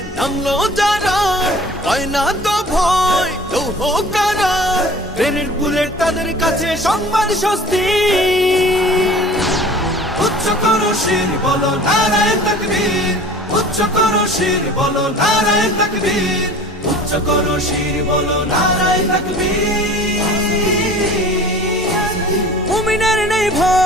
নামলো যারা, হয় না তো ভয় লৌহ কারা। গ্রেনেড বুলেট তাদের কাছে সংবাদ স্বস্তি। উচ্চ করো শির বলো নারায়ে তাকবীর, উচ্চ করো শির বলো নারায়ে তাকবীর, উচ্চ করো শির বলো নারায়ে তাকবীর। মুমিনের নেই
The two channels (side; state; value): both; normal; correlation 0.44